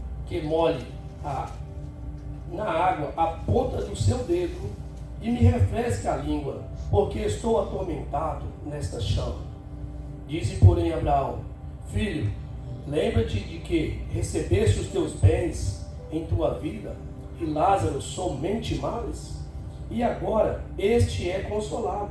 que molhe na água a ponta do seu dedo, e me refresque a língua, porque estou atormentado nesta chama. Disse, porém, Abraão: Filho, lembra-te de que recebeste os teus bens em tua vida, e Lázaro somente males? E agora este é consolado,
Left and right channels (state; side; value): identical; both; correlation 1.00